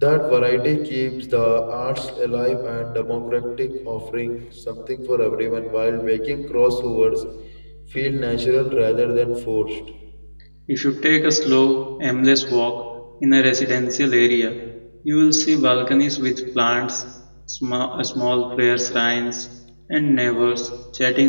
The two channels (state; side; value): inverted; both; correlation -1.00